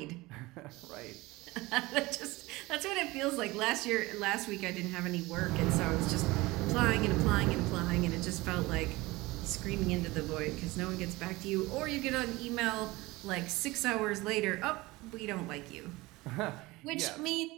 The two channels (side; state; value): left; quieter; 21.1 dB